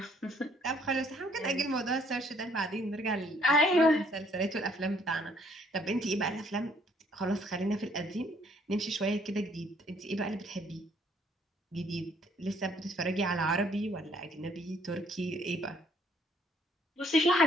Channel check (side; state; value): both; normal; correlation 0.64